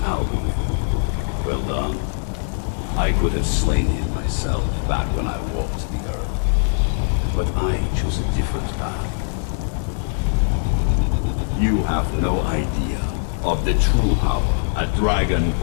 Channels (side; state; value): right; silent; digital silence